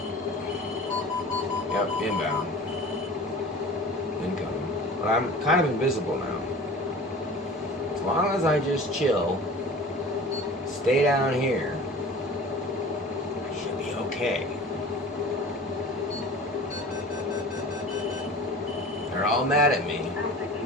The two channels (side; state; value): both; normal; correlation 0.40